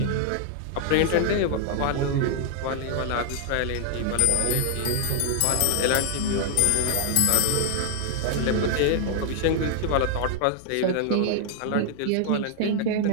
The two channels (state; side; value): different; both; correlation 0.00